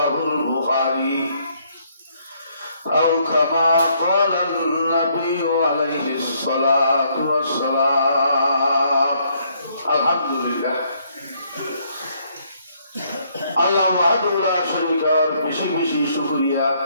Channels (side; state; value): both; inverted; correlation -0.69